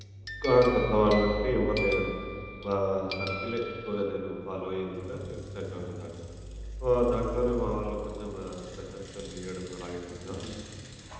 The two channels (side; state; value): both; identical; correlation 1.00